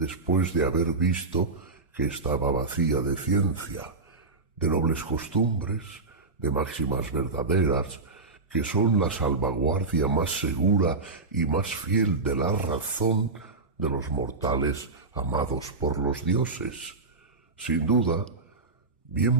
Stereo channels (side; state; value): left; quieter; 3.7 dB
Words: de haber visto que estaba vacía de ciencia, de nobles costumbres, de máximas verdaderas, que son la salvaguardia más segura y más fiel de la razón de los mortales amados por los dioses. Sin duda,